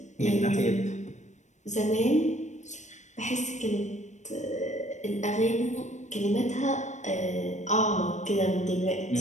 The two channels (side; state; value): right; late; 0.34 ms